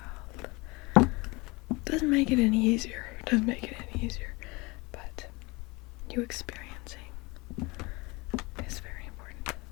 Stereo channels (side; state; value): right; quieter; 24.9 dB